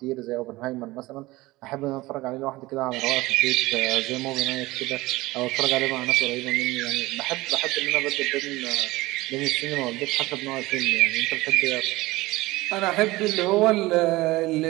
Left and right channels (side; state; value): left; quieter; 19.8 dB